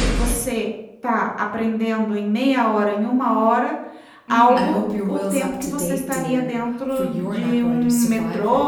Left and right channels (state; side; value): identical; both; correlation 1.00